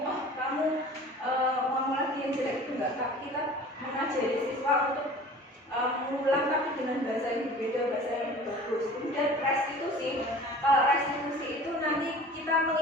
kamu ngomong lagi yang jelek, itu enggak. Tapi kita mengajari siswa untuk mengulang tapi dengan bahasa yang berbeda, bahasa yang bagus. Kemudian restitusi. Kalau restitusi itu nanti kita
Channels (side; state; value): both; normal; correlation 0.43